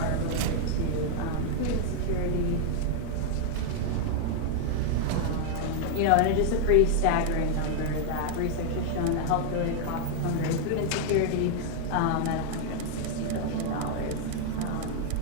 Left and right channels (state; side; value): different; both; correlation 0.00